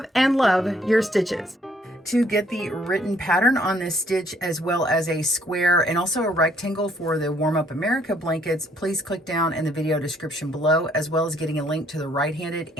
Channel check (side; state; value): both; normal; correlation 0.65